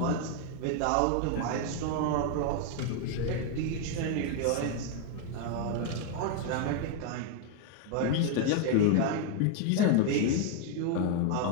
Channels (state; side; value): different; both; correlation 0.01